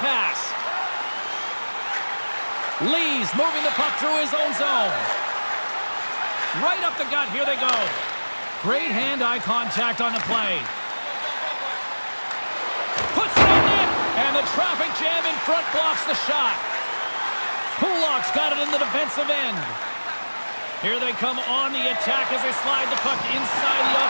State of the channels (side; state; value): both; inverted; correlation -1.00